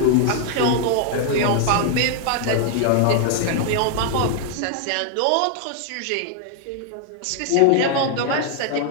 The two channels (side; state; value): both; different; correlation 0.00